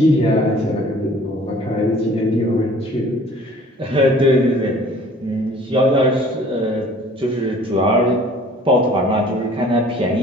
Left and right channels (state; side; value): normal; both; correlation 0.51